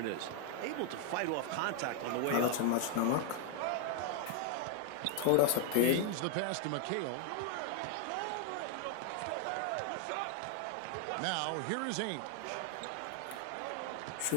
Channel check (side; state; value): both; different; correlation 0.00